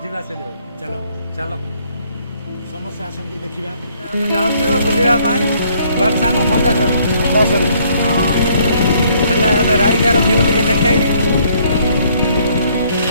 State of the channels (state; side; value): inverted; both; correlation -0.65